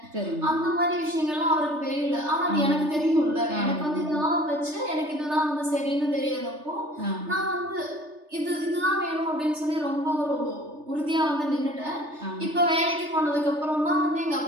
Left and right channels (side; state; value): left; late; 3.3 ms